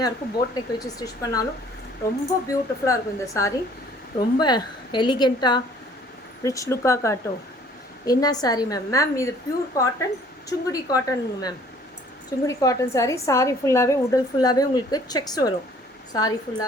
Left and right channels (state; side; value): normal; both; correlation 0.56